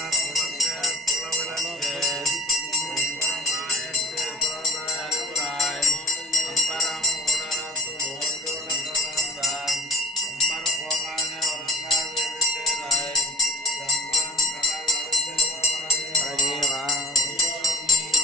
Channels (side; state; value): both; normal; correlation 0.42